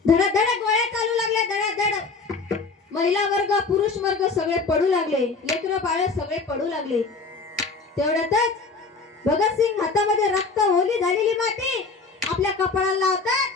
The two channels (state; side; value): quieter; right; 4.2 dB